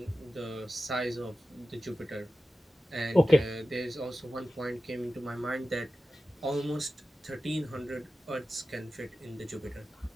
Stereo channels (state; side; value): normal; both; correlation 0.94